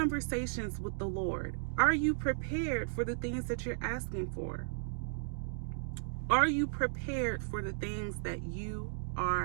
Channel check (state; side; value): silent; left; digital silence